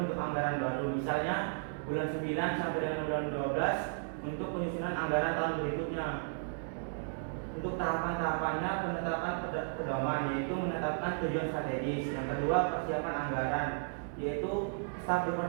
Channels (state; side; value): silent; left; digital silence